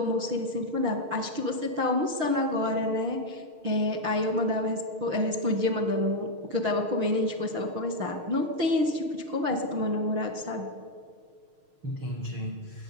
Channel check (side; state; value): left; late; 6.5 ms